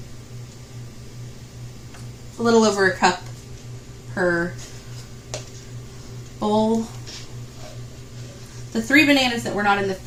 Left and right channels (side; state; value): both; identical; correlation 1.00